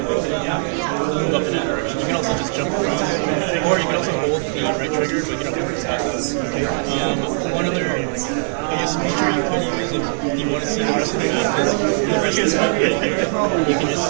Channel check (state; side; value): silent; left; 55 dB below the other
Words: up in that direction. You can also just jump around, or you can also hold the right trigger, but you don't have to stop. One other, I guess, feature you could use if you want to see the rest of the map is the rest of the map right here. You can just